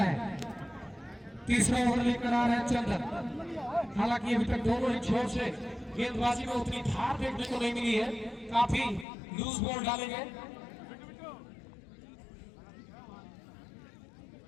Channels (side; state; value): right; drops out; at 9.1 s